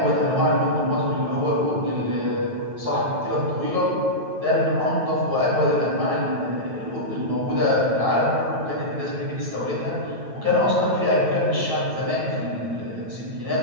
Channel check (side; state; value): left; late; 9.1 ms